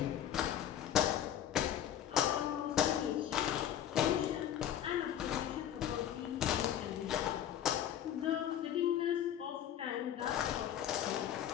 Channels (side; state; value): right; quieter; 10.5 dB